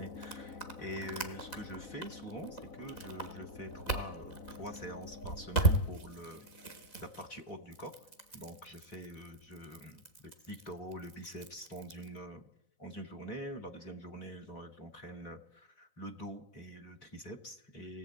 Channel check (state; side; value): late; right; 4.0 ms